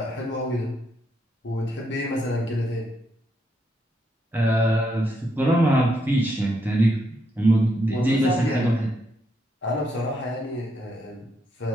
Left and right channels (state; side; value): normal; both; correlation 0.78